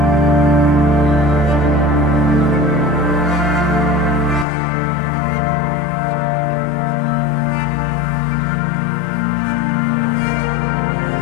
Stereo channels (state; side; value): drops out; right; at 4.5 s